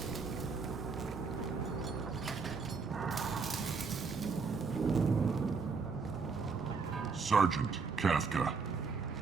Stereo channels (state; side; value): quieter; left; 5.0 dB